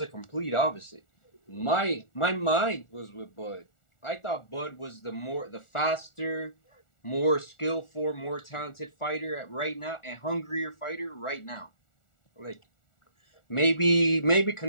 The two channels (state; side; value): late; right; 1.4 ms